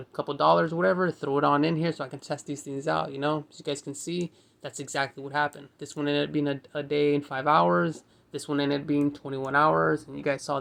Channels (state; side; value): identical; both; correlation 1.00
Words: couple dollars, whatever, throw it on in here so I can test these things out, you know. As you guys can see, that's exactly what happened. This one ended up being a day and 5 hours. This one ended up being 21 hours. And you guys saw